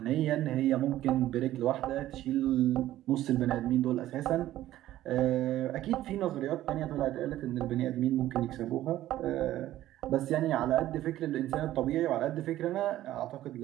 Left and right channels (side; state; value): left; quieter; 14.1 dB